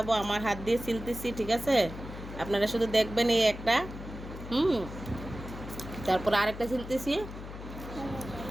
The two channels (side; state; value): left; noise; hum, 11 dB below the sound